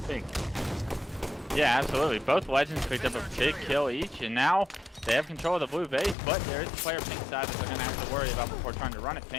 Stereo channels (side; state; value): right; drops out; at 6.2 s